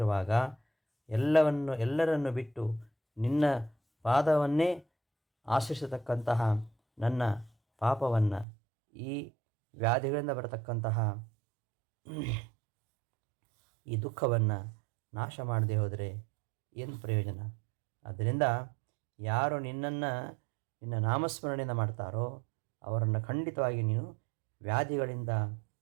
ಎಲ್ಲರನ್ನು ಬಿಟ್ಟು ನಿನ್ನ ಪಾದವನ್ನೇ ಆಶ್ರಯಿಸತಕ್ಕಂತಹ ನನ್ನ ಪಾಪವನ್ನು, ಈ ವ್ಯಾಧಿಗಳಿಂದ ಬರತಕ್ಕಂತಹ ಈ ದುಃಖವನ್ನು ನಾಶ ಮಾಡದೆ ಹೋದರೆ ಏನು ಪ್ರಯೋಜನ? ಆದ್ದರಿಂದ ಯಾರು ನಿನ್ನ ನಾಮಸ್ಮರಣೆಯಿಂದ ಮಾಡ್ತಾರೋ ಅವರನ್ನು ಖಂಡಿತವಾಗಿ ನೀನು ವ್ಯಾಧಿಗಳಿಂದ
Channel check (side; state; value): left; drops out; at 8.5 s